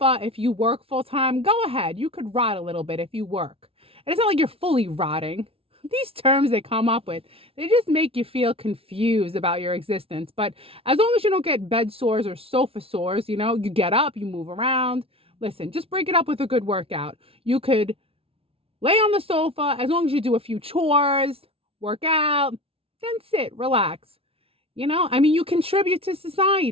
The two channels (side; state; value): left; late; 0.27 ms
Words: if you work full time, go ahead. You could rot a little bit if you work. And it's not like you're fully rotting. These terms they come up with, they just make you feel confused about your existence. But as long as you don't get bed sores or sofa sores, you get up, you move around. Listen, just break it up with a good workout. You could lay on the sofa as long as you do a few chores, work out, then sit, relax. You contribute to